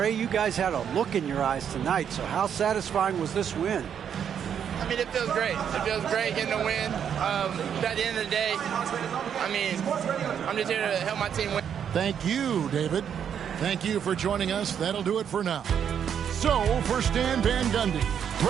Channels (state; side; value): quieter; left; 8.3 dB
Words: you guys had a look in your eyes tonight, so how satisfying was this win? I mean, it feels great. It feels great getting a win. But at the end of the day, I mean, I'm just here to help my team win. Thank you, David. Thank you for joining us. That'll do it for now. So, for Stan Van Gundy,